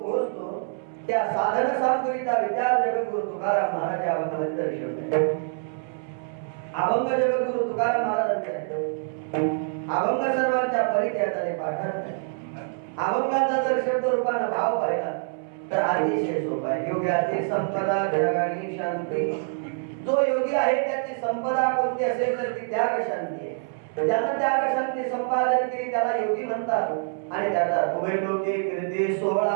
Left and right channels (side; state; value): left; silent; 61 dB below the other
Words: पोहोचतो त्या साधन सामग्रीचा विचार जगद्गुरु तुकाराम महाराज या अभंगामध्ये दर्शवतात. अभंग जगद्गुरु तुकाराम महाराजांचा अभंग सर्वांच्या परिचयाने पाठवतात. अभंगाचा जर शब्द रूपाने भाव पाहिला तर अतिशय सोपा आहे. योग्याची संपदा जगानी शांती. जो योगी आहे त्याची संपदा कोणती असेल तर ती त्याग शांती आहे. ज्यानं त्याग शांती संपादन केली त्याला योगी म्हणतात. आणि त्याचा उभय लोके कीर्ती